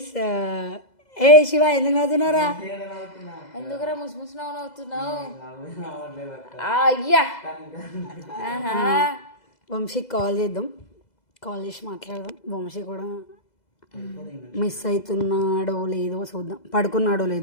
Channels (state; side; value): late; right; 2.0 ms